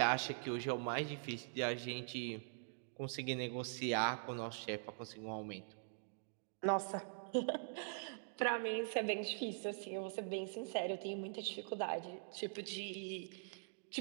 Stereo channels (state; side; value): silent; left; digital silence